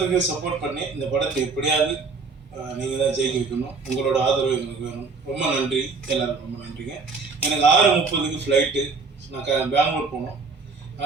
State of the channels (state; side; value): quieter; left; 4.5 dB